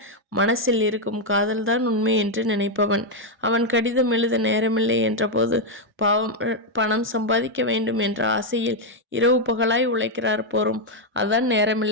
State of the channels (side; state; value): both; normal; correlation 0.01